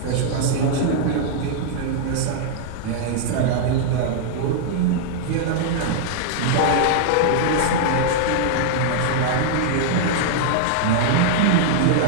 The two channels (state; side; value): different; both; correlation -0.01